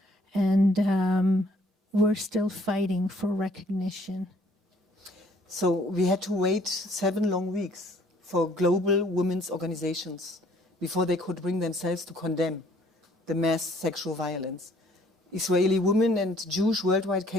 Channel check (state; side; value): normal; both; correlation 0.61